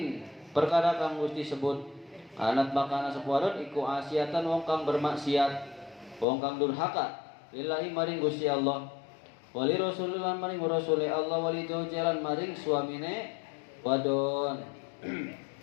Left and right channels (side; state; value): right; drops out; at 6.2 s